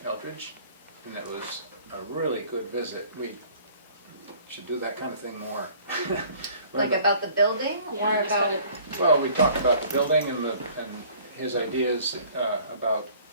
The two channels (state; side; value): inverted; both; correlation -0.53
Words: Eldridge, and it was a really good visit. We should do that kind of thing more. Like about the building, Yeah, or just about? kinda- Well, we talked about the building and his ideas about